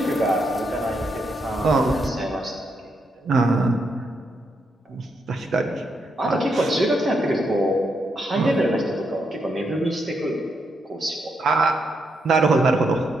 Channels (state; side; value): normal; both; correlation 0.80